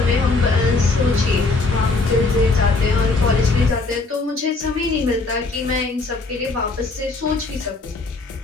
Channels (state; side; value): quieter; right; 3.6 dB